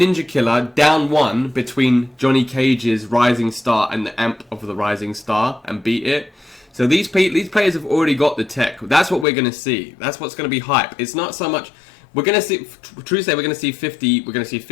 Killa down 1 between Johnny Cage's Rising Star and the amp of the Rising Star and beat it. So these players have already got the tech. That's what we're going to see. That's what's going to be hype. It's not so much... We're going to see, true to say, we're going to see 50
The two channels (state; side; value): drops out; right; at 9.2 s